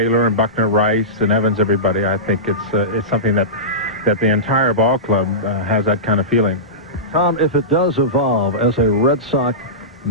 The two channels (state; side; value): normal; both; correlation -0.18